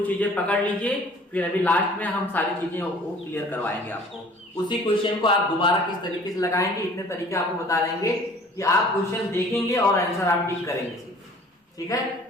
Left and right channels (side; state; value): both; normal; correlation 0.50